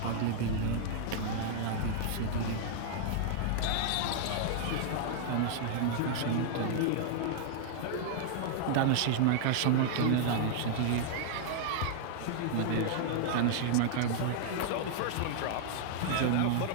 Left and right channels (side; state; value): both; different; correlation -0.01